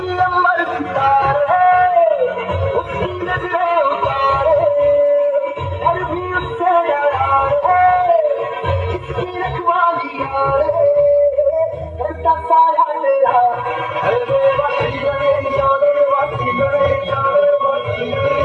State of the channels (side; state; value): both; identical; correlation 1.00